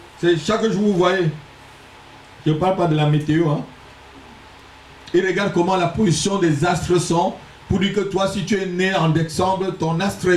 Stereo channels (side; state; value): both; identical; correlation 1.00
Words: C'est chaque jour vous voyez. Je ne parle pas de la météo. Hein. Ils regardent comment la position des astres sont. Pour dire que toi, si tu es né en décembre, ton astre